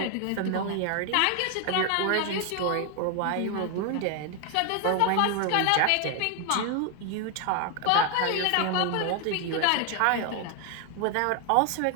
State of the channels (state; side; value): different; both; correlation 0.01